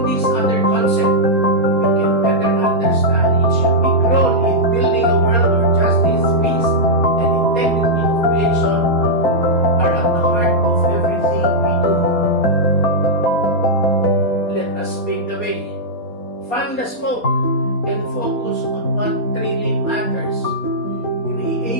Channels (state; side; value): late; right; 4.3 ms